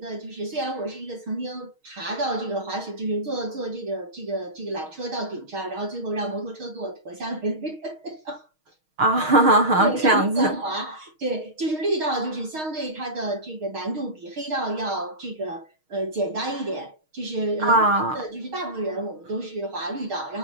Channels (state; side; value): late; left; 6.4 ms